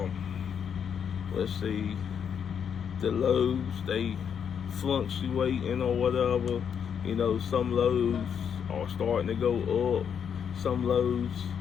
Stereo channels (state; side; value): quieter; right; 7.7 dB